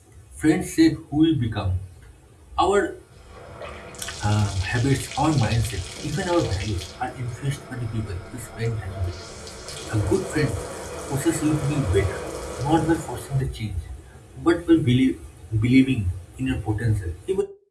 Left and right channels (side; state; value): both; identical; correlation 1.00